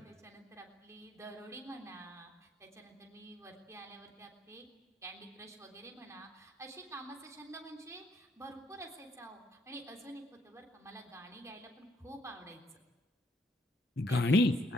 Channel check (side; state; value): both; normal; correlation 0.70